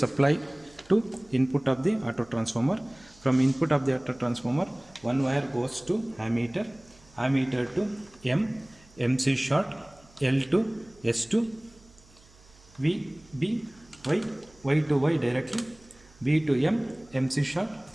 to input of the auto transformer. From input of the auto transformer, one wire goes to ammeter, ammeter to M, MC short, L to S2, V, B, Y to Y directly, B to M, MC short,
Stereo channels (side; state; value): right; noise; hum, 27 dB below the sound